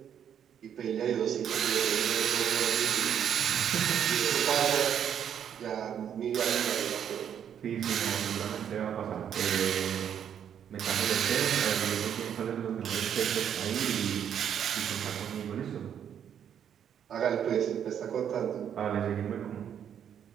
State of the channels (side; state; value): left; quieter; 8.9 dB